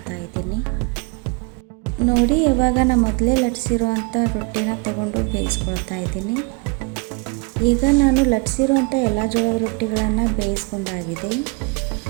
ಇದ್ದೀನಿ. ನೋಡಿ ಇವಾಗ ನಾನು ಮೊದಲೇ ಲಟ್ಟಿಸಿರುವಂಥ ರೊಟ್ಟಿನ ತಗೊಂಡು ಬೇಯಿಸ್ಕೊಳ್ತಾ ಇದ್ದೀನಿ. ಈಗ ನಾನು ಲಟ್ಟಿಸಿರುವಂಥ ಎಲ್ಲ ಜೋಳದ ರೊಟ್ಟಿಗಳನ್ನು ಬೇಯಿಸ್ಕೊಂಡಾಗಿದೆ.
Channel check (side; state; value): left; quieter; 29.7 dB